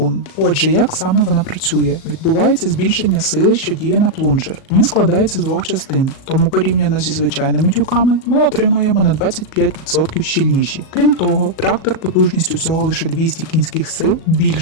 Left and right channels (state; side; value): late; right; 37 ms